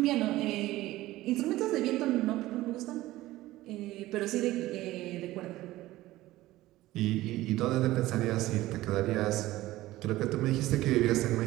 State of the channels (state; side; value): quieter; left; 16.8 dB